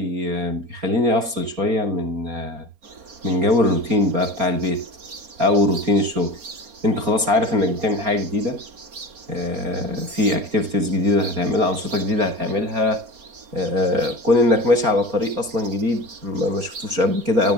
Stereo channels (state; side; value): late; left; 4.3 ms